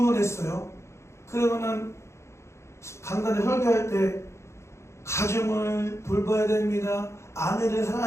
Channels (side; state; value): right; late; 0.13 ms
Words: 했어요. 그러면은 강단에 설교할 때 가정을 돌봐야 됩니다. 아내를